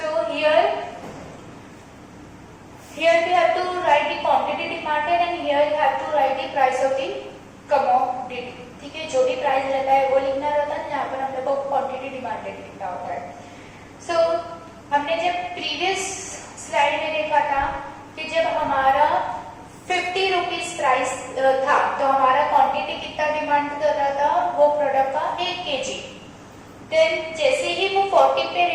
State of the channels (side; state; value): both; identical; correlation 1.00